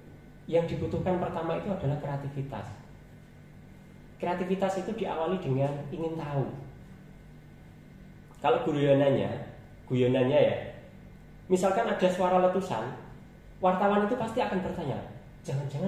Yang dibutuhkan pertama itu adalah kreativitas. Kreativitas itu diawali dengan ingin tahu. Kalau guyonannya ya, misalkan ada suara letusan, wartawan itu pasti akan bertanya,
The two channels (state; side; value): identical; both; correlation 1.00